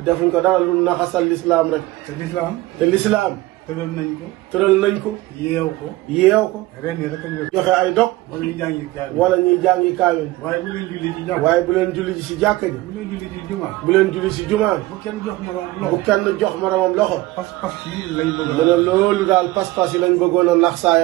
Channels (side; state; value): left; quieter; 18.8 dB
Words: defuñ ko dara lu naxasal lislaam rek. te lislaam. te lislaam tëral nañ ko. tëral nañ ko. yeew ko. yeew ko. ren yi rek a joxe ay dog. wala ñu jàngi kaay. wala ñuy jàngi kaamil. waaye bu leen julli ci jàkk. waaye bu leen julli ci jàkka ji. bu leen julli ci jumaa. bu leen julli ci jumaa. bu kenn jox ma bu loxo. kenn jox moromam loxo. pas-pas yi lañ bëgg. mu ne loolu daal pas-pas yi lañ bëggoon a nax